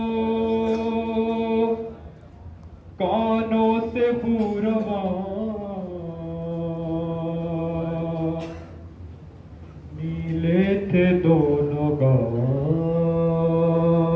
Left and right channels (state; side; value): identical; both; correlation 1.00